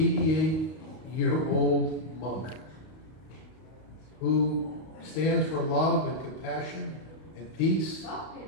monk who stands for love and compassion and peace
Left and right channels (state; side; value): late; right; 32 ms